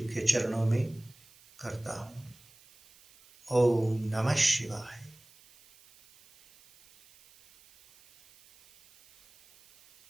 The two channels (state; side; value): noise; right; hiss, 27 dB below the sound